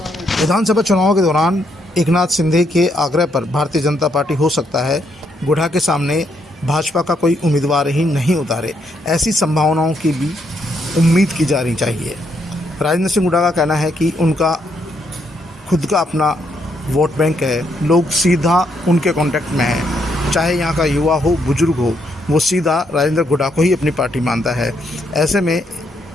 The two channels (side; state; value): both; normal; correlation 0.75